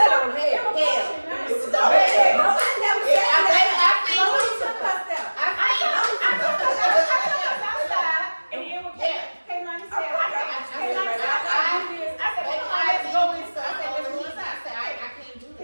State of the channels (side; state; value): both; inverted; correlation -1.00